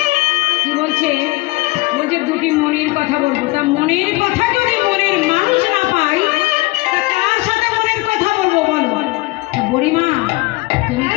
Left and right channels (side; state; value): right; quieter; 22.5 dB